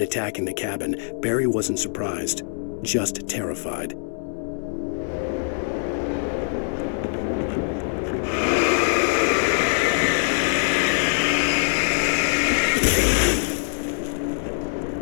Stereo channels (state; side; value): silent; right; digital silence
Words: attacking the cabin, Barry wasn't surprised, just terrified.